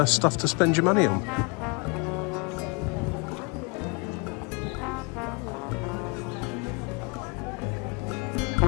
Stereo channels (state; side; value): quieter; right; 31.4 dB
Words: stuff to spend your money on.